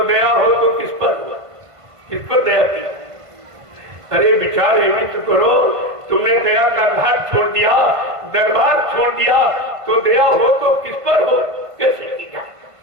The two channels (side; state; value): left; late; 1.5 ms